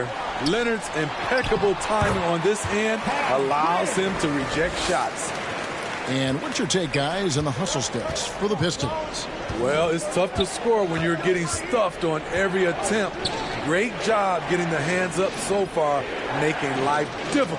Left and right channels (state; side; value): identical; both; correlation 1.00